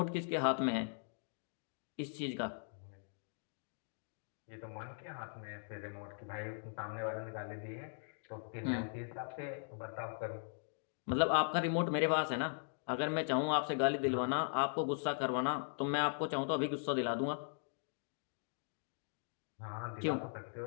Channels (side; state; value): right; silent; digital silence